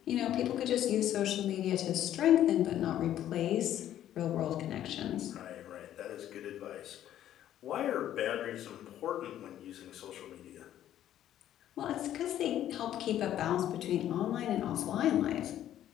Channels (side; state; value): right; quieter; 11.7 dB